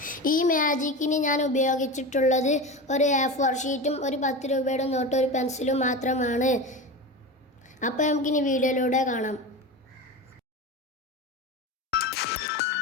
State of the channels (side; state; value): both; normal; correlation 0.26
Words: ഈ മാജിക്കിന് ഞാൻ ഉപയോഗിച്ചിട്ടുള്ളത് ഒരു A4 ഷീറ്റും ഒരു 10 രൂപയുടെ നോട്ടും ഒരു പെൻസിലും മാത്രമാണ്. അപ്പോൾ നമുക്കിനി വീഡിയോയിലൂടെ കാണാം.